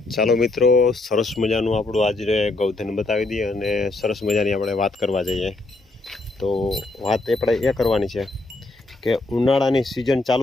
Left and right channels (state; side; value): quieter; right; 3.0 dB